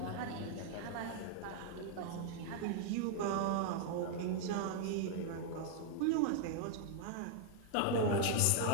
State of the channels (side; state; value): both; different; correlation 0.00